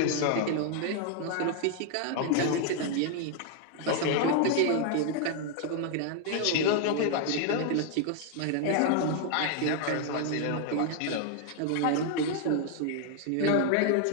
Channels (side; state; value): both; different; correlation 0.00